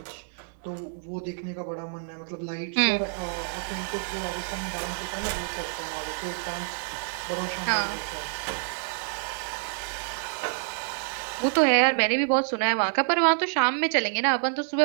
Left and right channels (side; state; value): left; silent; digital silence